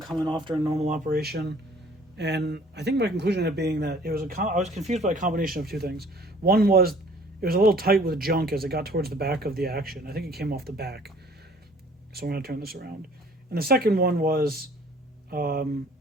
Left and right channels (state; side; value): normal; both; correlation 0.54